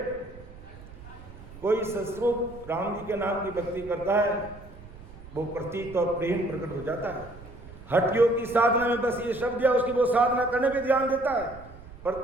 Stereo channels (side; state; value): right; noise; rumble, 18 dB below the sound